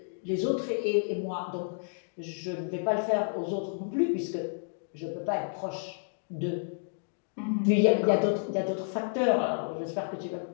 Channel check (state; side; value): silent; right; digital silence